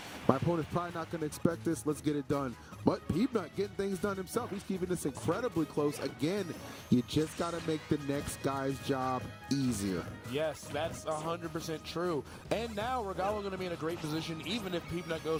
My opponent's probably not going to expect this. Let's get it done. But Peanut getting things done himself. He's keeping this incredibly close. Again, you just got to make the next guy's job easier. Yes, that's 100% true. And now Regalo going to be in a great position, even if Peanut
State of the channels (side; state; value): both; identical; correlation 1.00